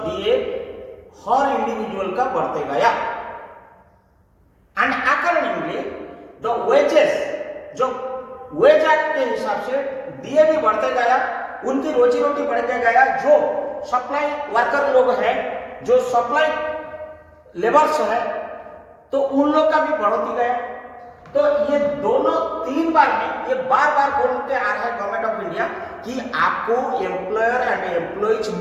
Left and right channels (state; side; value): identical; both; correlation 1.00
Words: डीए हर इंडिविजुअल का बढ़ते गया। वेजेस जो वेज एक्ट के हिसाब से दिए भी बढ़ते गया, उनकी रोजी रोटी बढ़ते गया। जो सप्लाई वर्कर लोग हैं, जो सप्लाई लेबर्स है, तो उन लोग का भी बढ़ोती गया। तो ये दोनों 3 बार में ये बार बार बोलते आ रहा है गवर्नमेंट ऑफ इंडिया कि आपको एम्प्लॉयर एंड एम्प्लॉइज